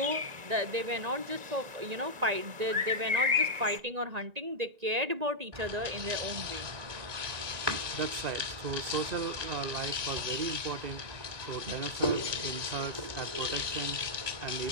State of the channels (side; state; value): left; late; 1.9 ms